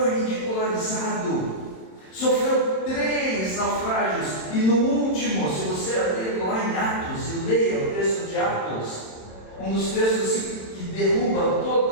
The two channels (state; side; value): late; right; 27 ms